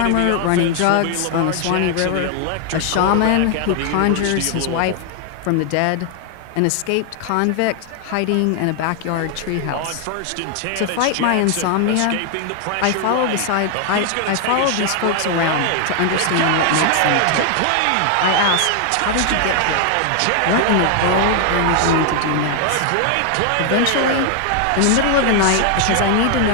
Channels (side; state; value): both; different; correlation 0.00